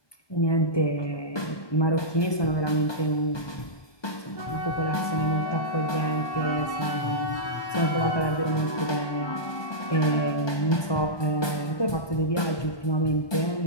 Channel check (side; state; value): right; late; 1.2 ms